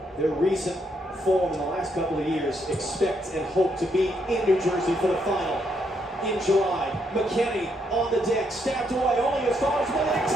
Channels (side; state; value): both; normal; correlation 0.76